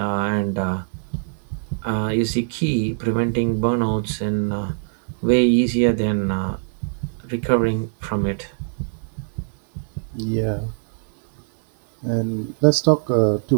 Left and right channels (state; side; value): silent; left; 64 dB below the other